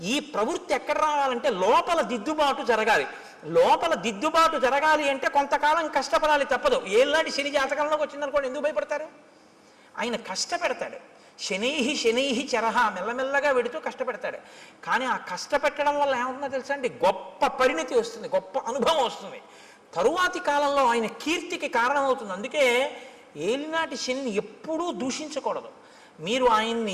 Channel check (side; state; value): both; identical; correlation 1.00